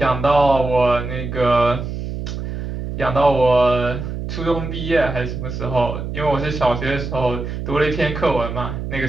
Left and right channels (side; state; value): right; noise; hum, 6 dB below the sound